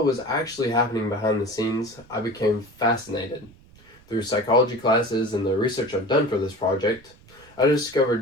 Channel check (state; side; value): noise; right; rumble, 26 dB below the sound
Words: was actually happening behind the scenes, I became fascinated. Through psychology classes and the research I've done for this project, I